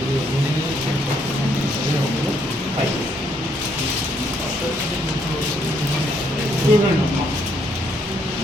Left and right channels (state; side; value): normal; both; correlation 0.71